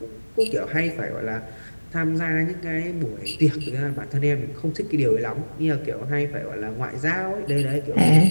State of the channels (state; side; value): inverted; both; correlation -1.00